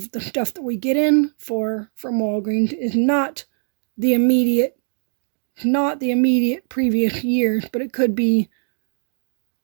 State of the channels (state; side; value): silent; left; digital silence